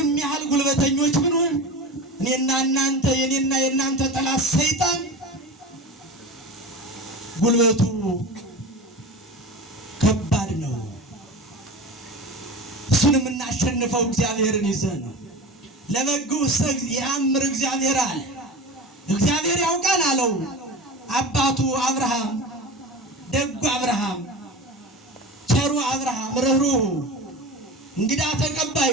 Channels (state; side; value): normal; both; correlation 0.31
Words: ያህል ጉልበተኞች ብንሆን እኔና እናንተ የኔና የእናንተ ጠላት ሰይጣን ጉልበቱ ከባድ ነው። እሱን የምናሸንፈው እግዚአብሔርን ይዘን ነው። ለበግዑሰ የአምር እግዚአብሔር አለ። እግዚአብሔር ያውቃል አለው አባቱ አብርሃም። ደጉ አብርሃም፣ ቸሩ አብርሃም፣ ርኅሩኅ እንግዳ